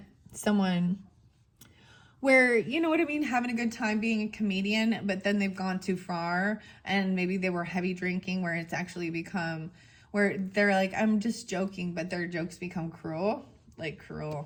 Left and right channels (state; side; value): identical; both; correlation 1.00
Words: someone where, you know what I mean, having a good time being a comedian, but then they've gone too far and maybe they were heavy drinking, where it's actually become, where they're like, I'm just joking, but their jokes become cruel, like